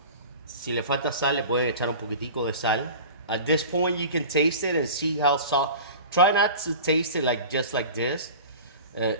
Si le falta sal, le pueden echar un poquitico de sal. At this point, you can taste it and see how salt. Try not to taste it just like this.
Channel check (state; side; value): inverted; both; correlation -0.36